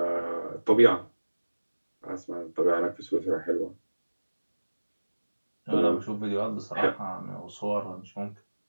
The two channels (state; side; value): inverted; both; correlation -1.00